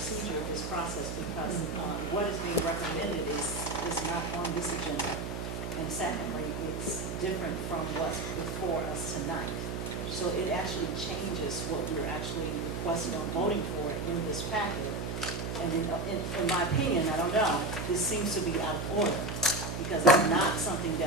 of this process, because what is being recommended is not on this agenda. And secondly, it's different from what's before us tonight. So it actually changes what we're actually requesting on voting for in this packet. And in my opinion, I don't know, this seems to be out of order, because it's not something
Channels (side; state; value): right; noise; hum, 5 dB below the sound